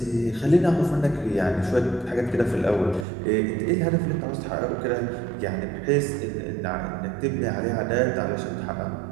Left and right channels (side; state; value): left; drops out; at 3.1 s